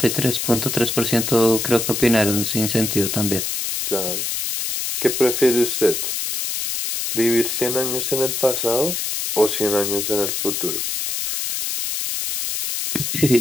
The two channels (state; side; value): noise; left; hiss, 2 dB below the sound